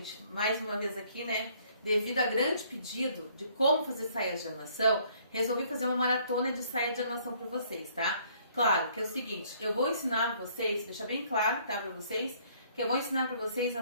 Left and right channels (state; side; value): inverted; both; correlation -0.62